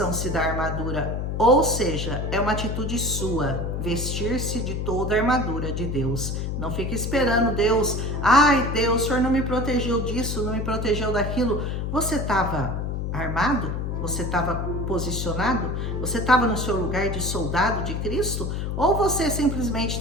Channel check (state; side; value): noise; left; hum, 2 dB below the sound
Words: da armadura. Ou seja, é uma atitude sua, vestir-se de toda a armadura de Deus. Não fique esperando Deus, ai Deus, o Senhor não me protegeu disso, não me protegeu daquilo. Você estava armado? Você estava posicionado? Você estava no seu lugar de soldado de Cristo? Ou você simplesmente